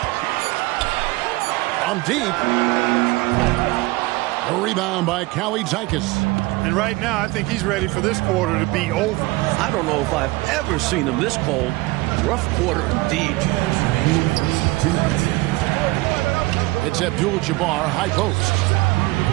From deep. A rebound by Callie Zykas. And right now, I think he's ready for this quarter to be over. I don't know if I've ever seen him this cold. Rough quarter indeed. It's Abdul-Jabbar, high post.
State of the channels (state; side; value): quieter; left; 21.5 dB